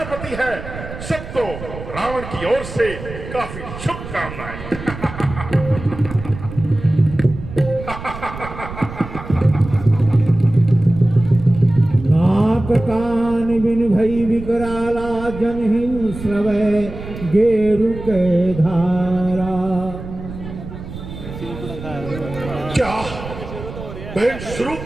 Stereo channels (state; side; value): noise; right; rumble, 11 dB below the sound